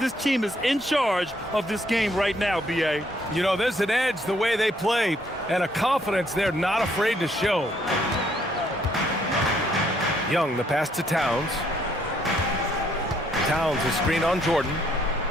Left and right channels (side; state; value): both; normal; correlation 0.68